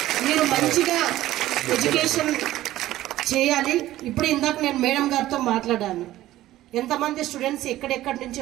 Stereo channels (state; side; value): quieter; left; 14.9 dB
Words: మీరు మంచిగా ఎడ్యుకేషన్ చేయాలి. ఇప్పుడు ఇందాక నేను మేడం గారితో మాట్లాడాను, ఎంతమంది స్టూడెంట్స్ ఎక్కడెక్కడి నుంచి